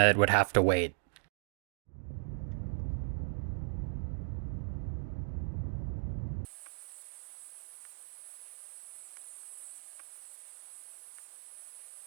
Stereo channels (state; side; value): silent; left; digital silence